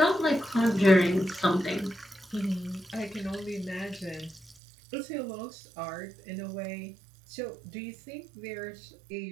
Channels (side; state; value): left; drops out; at 4.5 s